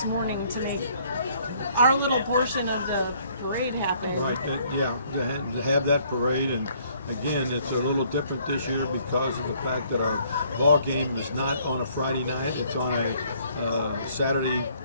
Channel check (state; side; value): inverted; both; correlation -0.63